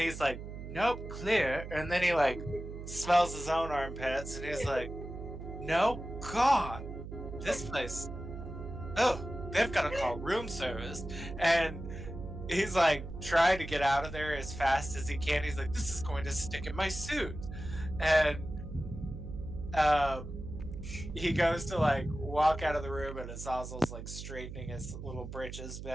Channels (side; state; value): right; noise; hum, 9 dB below the sound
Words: like, nope, clear, and then he like smells his own armpits and he's like, no, God, this place, oh, they've got to call room service. And he's like trying to get out of there as fast as he can. He's like, this is going to stick in my suit. And he goes to like walk out of the room and Azazel's like straightening his little britches